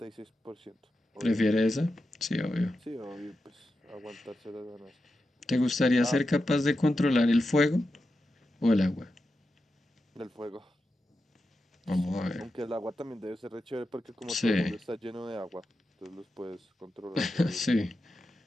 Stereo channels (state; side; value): normal; both; correlation 0.90